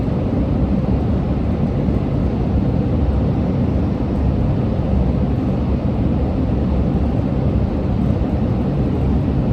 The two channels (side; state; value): both; identical; correlation 1.00